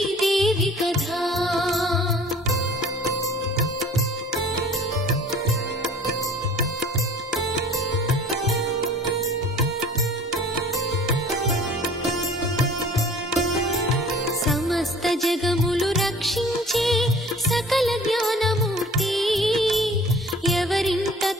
కథ సమస్త జగములు రక్షించే సకల జ్ఞానమూర్తి ఎవరింట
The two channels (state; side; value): normal; both; correlation 0.48